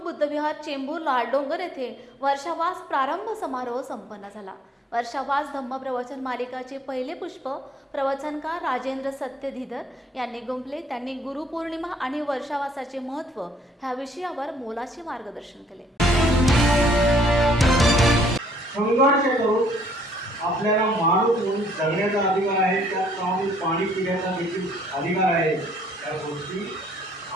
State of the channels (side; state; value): both; normal; correlation 0.64